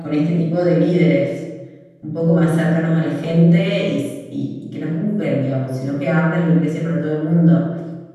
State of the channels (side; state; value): both; identical; correlation 1.00